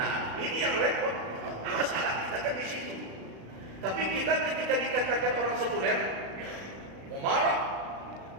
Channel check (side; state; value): left; late; 36 ms